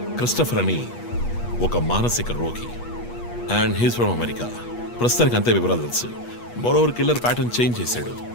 క్రిస్టఫర్ అని ఒక మానసిక రోగి అండ్ హీస్ ఫ్రమ్ అమెరికా. ప్రస్తుతానికి అంతే వివరాలు తెలుసు. మరోవర్ కిల్లర్ ప్యాటర్న్ చేంజ్ చేశాడు.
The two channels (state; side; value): late; right; 8.3 ms